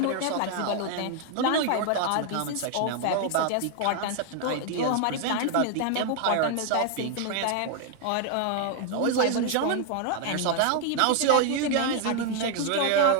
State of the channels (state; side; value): different; both; correlation 0.00